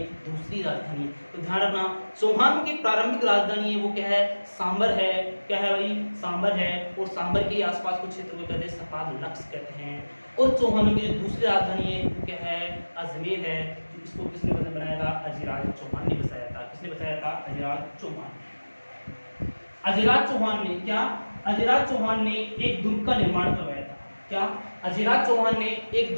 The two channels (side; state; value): both; inverted; correlation -1.00